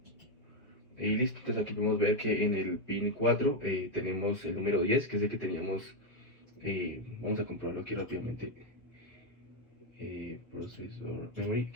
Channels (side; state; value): both; normal; correlation 0.05